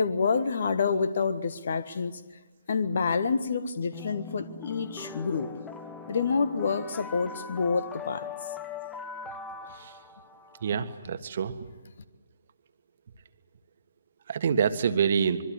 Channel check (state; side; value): inverted; both; correlation -0.72